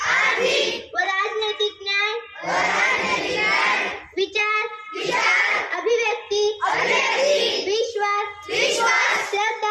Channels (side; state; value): both; identical; correlation 1.00